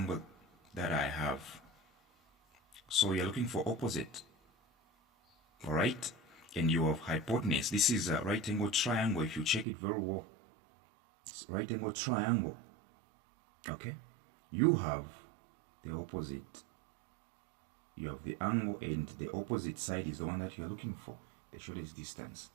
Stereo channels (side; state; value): left; drops out; at 9.7 s